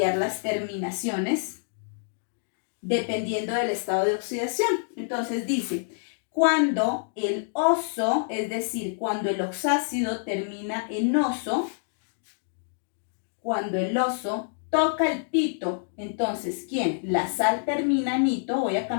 las terminaciones dependiendo del estado de oxidación. Entonces dice, cuando el oso, es decir, cuando el oxácido termina en oso, cuando el oso toca el pito, entonces, ¿quién? La sal termina en ito, voy a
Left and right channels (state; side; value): silent; right; digital silence